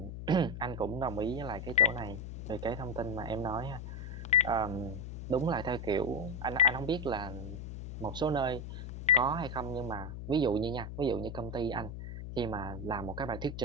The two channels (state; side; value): noise; left; hum, 8 dB below the sound